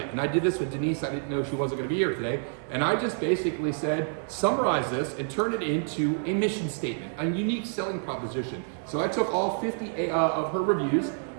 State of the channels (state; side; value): silent; left; digital silence